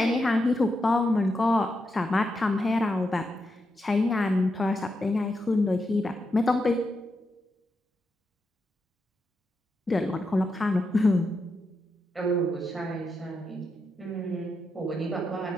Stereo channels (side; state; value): both; normal; correlation 0.85